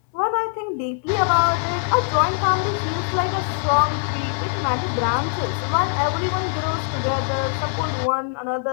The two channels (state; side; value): silent; right; digital silence